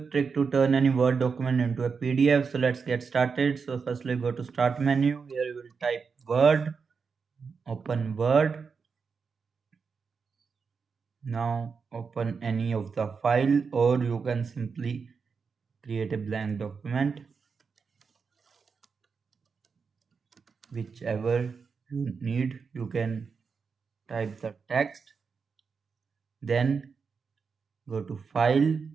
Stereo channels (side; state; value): left; quieter; 5.5 dB